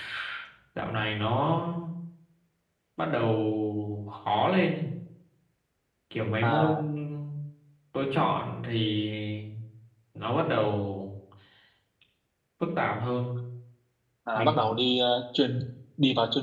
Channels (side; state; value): both; identical; correlation 1.00